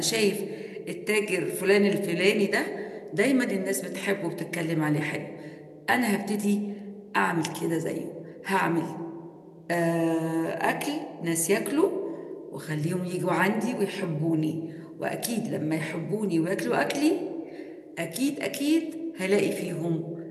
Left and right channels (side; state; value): both; identical; correlation 1.00